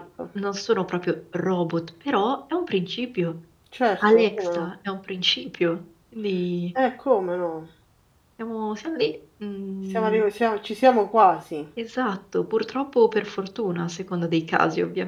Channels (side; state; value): both; identical; correlation 1.00